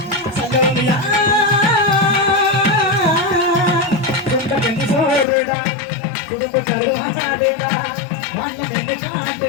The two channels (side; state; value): right; drops out; at 5.2 s